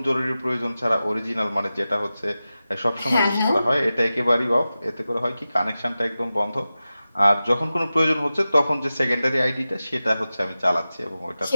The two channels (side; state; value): both; inverted; correlation -0.94